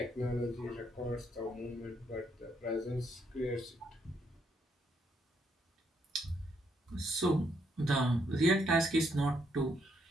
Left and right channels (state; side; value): normal; both; correlation 0.74